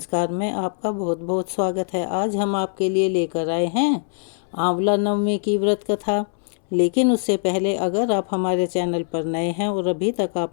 में आपका बहुत बहुत स्वागत है। आज हम आपके लिए लेकर आए हैं आंवला नवमी की व्रत कथा। लेकिन उससे पहले अगर आप हमारे चैनल पर नए हैं और अभी तक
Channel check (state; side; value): silent; right; 64 dB below the other